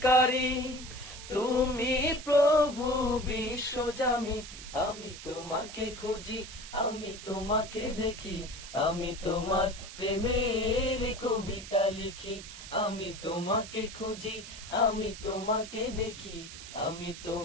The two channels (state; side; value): noise; right; hiss, 13 dB below the sound